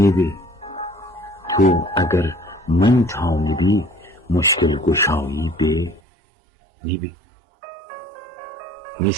تو اگر من تامدی مشکل گشایی به نیبه.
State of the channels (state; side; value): drops out; left; at 6.0 s